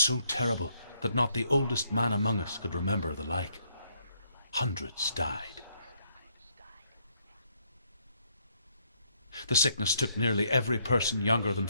terrible that not the oldest man among us could remember the like. Hundreds died. The sickness took nearly every person younger than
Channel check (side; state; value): both; inverted; correlation -0.71